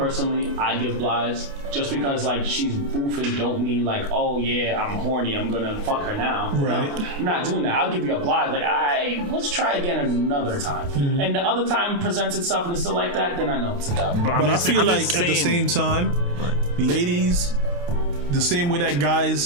I give blights just because like she's boofing don't mean like, oh yeah, I'm horny, I'm gonna fuck her now. Right. No, I'm not doing that. I'll give you a blight like, let's try again another time. Mm-hmm. And the other time presents itself and it's still like that, then I know it's a dub. But I feel like at the same time, ladies, the same way that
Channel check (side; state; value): left; late; 28 ms